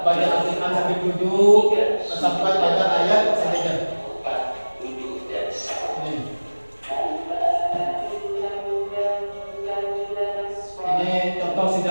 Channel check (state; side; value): inverted; both; correlation -1.00